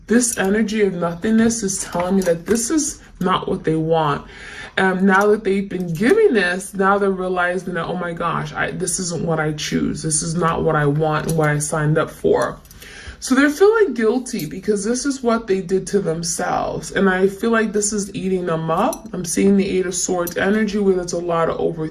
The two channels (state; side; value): identical; both; correlation 1.00